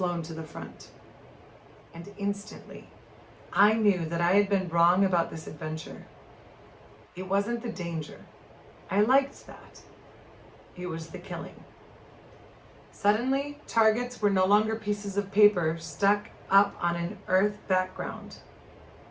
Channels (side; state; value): both; identical; correlation 1.00